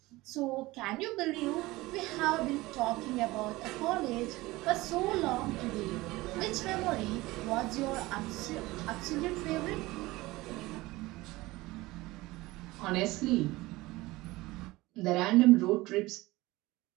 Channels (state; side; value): quieter; left; 19.9 dB